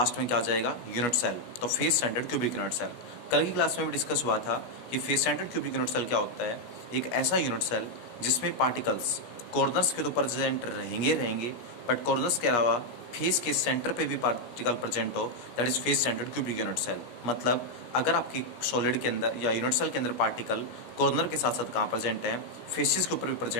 में क्या आ जाएगा यूनिट सेल। तो face centred cubic unit cell कल की क्लास में भी डिस्कस हुआ था कि face centred cubic unit cell क्या होता है। एक ऐसा यूनिट सेल जिसमें पार्टिकल्स कॉर्नर्स के तो प्रेजेंट रहेंगे बट कॉर्नर्स के अलावा फेस के सेंटर पे भी पार्टिकल प्रेजेंट हो, that is face centred cubic unit cell. मतलब अगर आपकी सॉलिड के अंदर या यूनिट सेल के अंदर पार्टिकल कॉर्नर के साथ साथ कहाँ प्रेजेंट है, फेसिस के ऊपर भी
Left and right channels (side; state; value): right; late; 17 ms